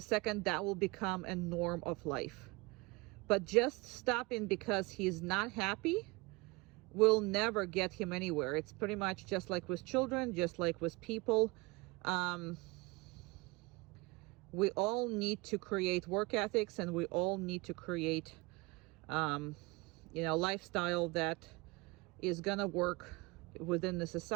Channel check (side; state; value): left; quieter; 24.8 dB